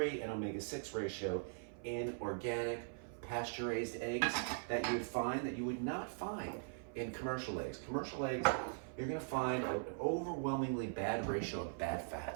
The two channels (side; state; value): left; silent; 50 dB below the other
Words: and omega-6 ratio in organic, pasture-raised eggs that you would not find in commercial eggs. Commercial eggs, you're going to find an overwhelmingly bad ratio of bad